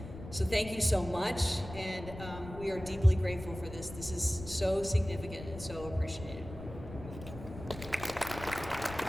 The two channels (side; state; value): left; noise; rumble, 12 dB below the sound